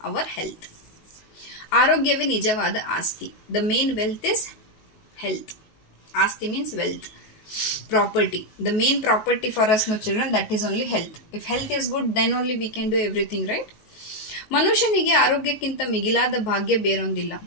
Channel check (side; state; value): right; late; 19 ms